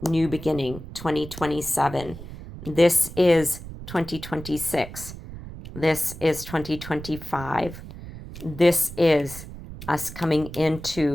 new beginning, 2027. This is 2026. This is 2025. This is us coming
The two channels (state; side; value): noise; right; rumble, 12 dB below the sound